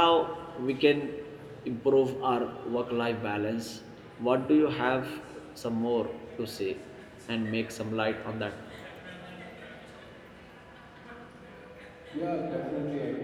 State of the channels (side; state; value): both; identical; correlation 1.00